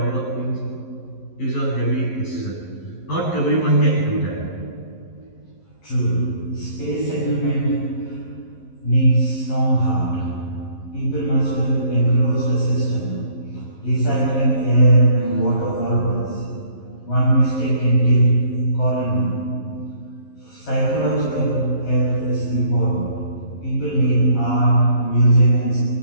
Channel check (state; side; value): late; right; 11 ms